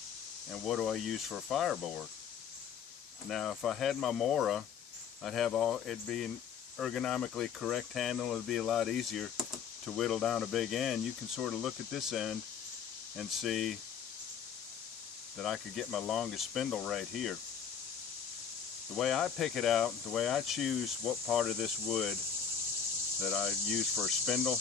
And what do I use for a fireboard? Now, if I had my Mora, I'd have it'd be an ergonomically correct handle. It'd be a lot easier to whittle down a big end. You can sort of look at this end and see that I could get my longest spindle right here. The way I pick it out, the way I choose what part of this wood that I use for a spindle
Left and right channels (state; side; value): quieter; right; 7.3 dB